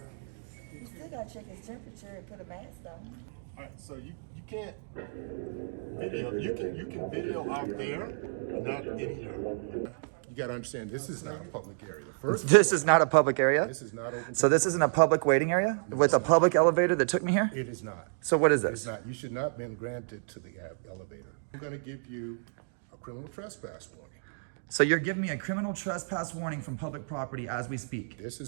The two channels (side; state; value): left; silent; digital silence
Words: still gotta check his temperature and put a mask on. All right, so you can't video. You can video out there, but not in here. You got to understand, this is not a public area. This is not a public area? This is not open. So this isn't a public waiting area with a public elevator that took me here? It is not. So what is It's this? not. You should not have been granted to the elevator. I'm going to give you a criminal trespass warning. So you're giving me a criminal trespass warning from public property as we speak.